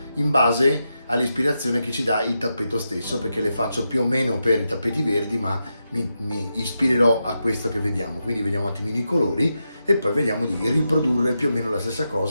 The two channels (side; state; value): both; inverted; correlation -0.87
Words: in base all'ispirazione che ci dà il tappeto stesso, perché le faccio più o meno per i tappeti verdi, ma mi ispirerò a questo che vediamo. Quindi vediamo un attimino i colori e poi vediamo di riprodurre più o meno la stessa